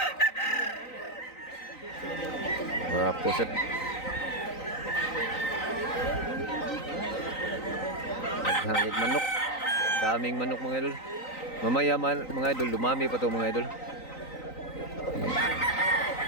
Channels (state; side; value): late; right; 3.9 ms